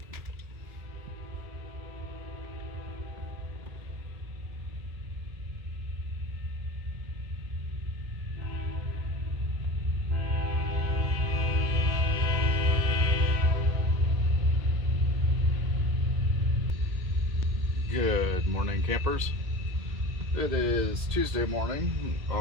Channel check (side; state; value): left; late; 2.1 ms